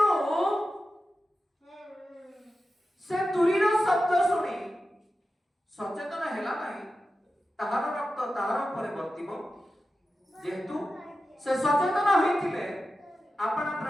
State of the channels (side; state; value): both; normal; correlation 0.92